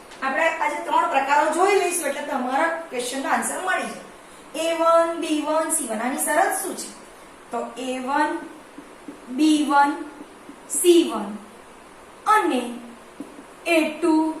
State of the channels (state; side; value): identical; both; correlation 1.00